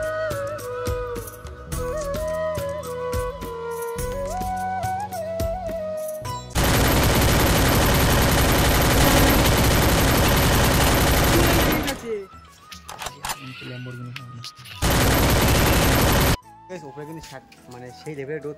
ওপরে কিন্তু মানে সেই লেভেলের রোদ,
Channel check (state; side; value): identical; both; correlation 1.00